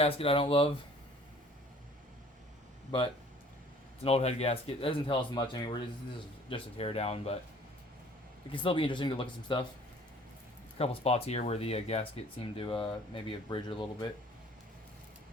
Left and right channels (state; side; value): normal; both; correlation 0.52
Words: I don't love, but it's an old head gasket. That doesn't tell us much anyway. This is just a teardown, but it can still be interesting to look at some stuff. A couple spots here where the gasket seemed to maybe have bridged a little bit.